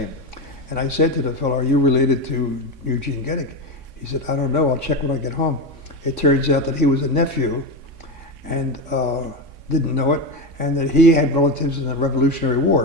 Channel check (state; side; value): late; left; 3.6 ms